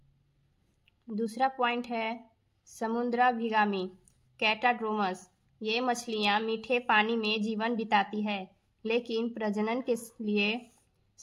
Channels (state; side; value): identical; both; correlation 1.00